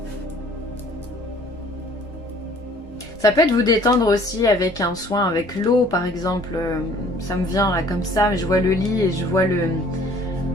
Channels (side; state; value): both; normal; correlation 0.55